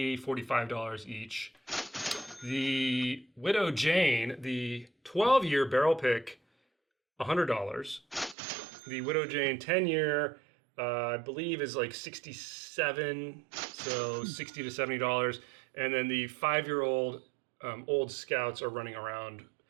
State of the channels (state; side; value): drops out; left; at 8.3 s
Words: $45 each. The Widow Jane, the 12-year barrel pick, $100. The Widow Jane 10-year, I believe, is like $67, so $60 to $70. And then the 5-year-old Old Scouts are running around.